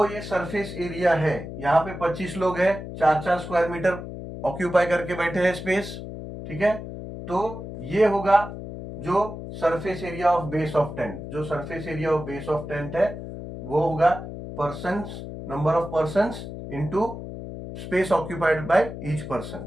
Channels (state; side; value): noise; left; hum, 9 dB below the sound